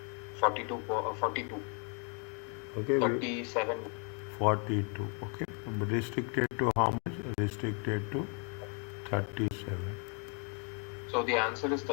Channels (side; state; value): right; quieter; 37.7 dB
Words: 42. 42. Okay, 37. 42. Okay, restricted to how much? Restricted to 37. So the answer is